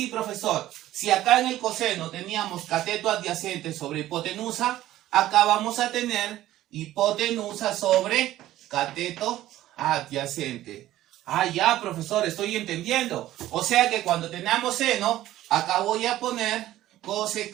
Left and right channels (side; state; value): left; quieter; 14.3 dB